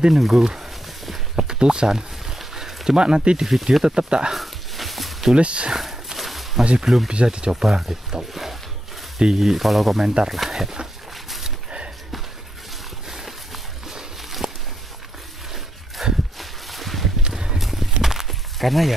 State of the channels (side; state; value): both; normal; correlation 0.82